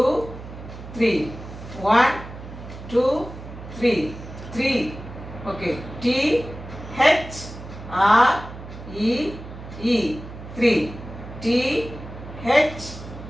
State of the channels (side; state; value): right; noise; hum, 13 dB below the sound